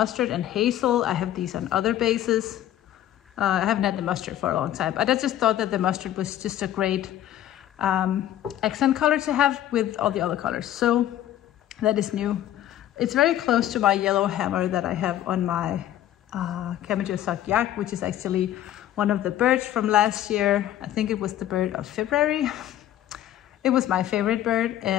and hazel. I have these on other bases. I haven't had the mustard for a long time, but I just thought that the mustard was just a great accent color to have with all the other colors. So that is new. It's very close to my yellow hammer that I have on my Camellia Sock Yak, which is actually one of the birds from last year. I think it was the bird of February. It was my favorite bird,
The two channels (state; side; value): quieter; right; 12.4 dB